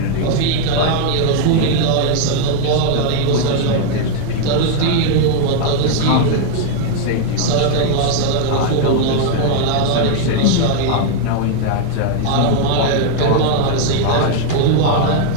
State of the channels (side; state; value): both; different; correlation 0.00